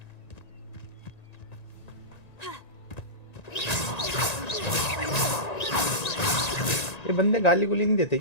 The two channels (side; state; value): right; late; 1.9 ms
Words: ये बंदे गाली गुली नहीं देते